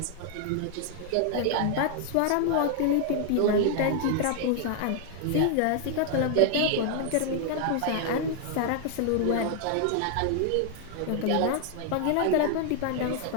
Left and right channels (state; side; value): different; both; correlation 0.00